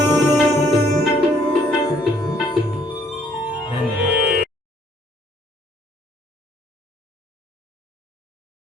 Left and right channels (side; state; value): both; normal; correlation 0.64